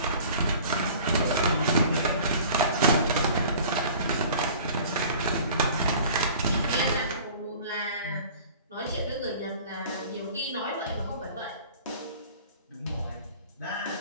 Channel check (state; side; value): inverted; both; correlation -0.46